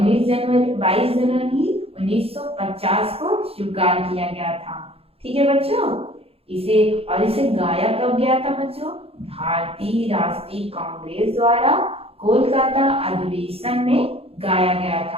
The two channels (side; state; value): left; late; 0.28 ms